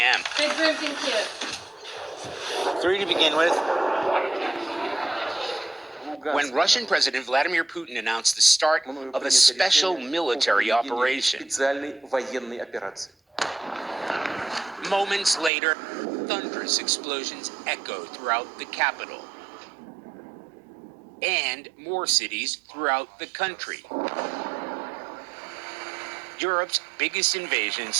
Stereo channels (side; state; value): left; drops out; at 15.5 s